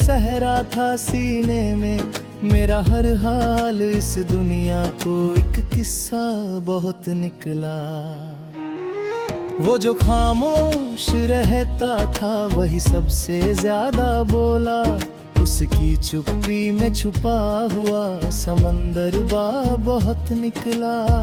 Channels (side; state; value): both; identical; correlation 1.00